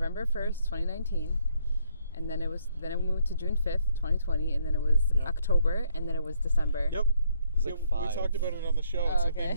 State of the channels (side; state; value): both; inverted; correlation -0.69